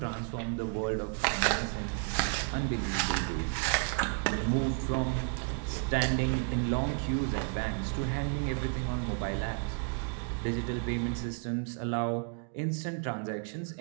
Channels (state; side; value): quieter; left; 37.8 dB